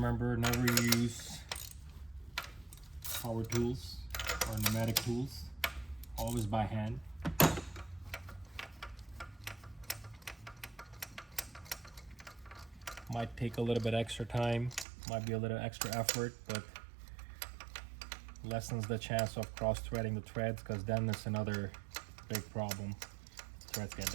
never use power tools or pneumatic tools. Always by hand. Might take a little bit extra time. Might be a little extra effort, but lessens the chance of cross-threading the threads, because then it's another big problem. Threads get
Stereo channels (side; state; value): left; drops out; at 14.9 s